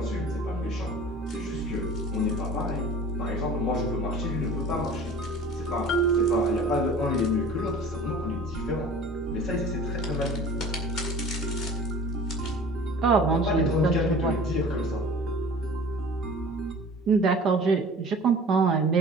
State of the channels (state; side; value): normal; both; correlation 0.43